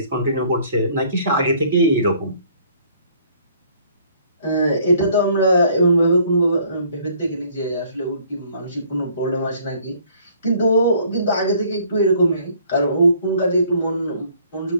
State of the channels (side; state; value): both; inverted; correlation -0.60